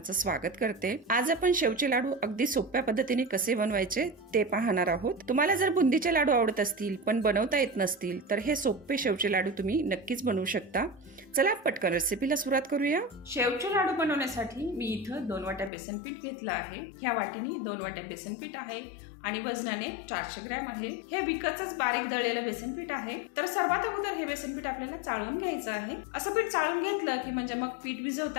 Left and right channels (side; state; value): right; drops out; at 15.7 s